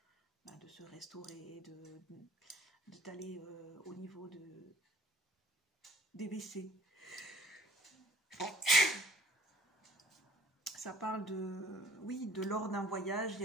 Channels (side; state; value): both; normal; correlation 0.54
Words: se restaurer, d'aller au niveau des WC. Ça parle de lors d'un voyage, il y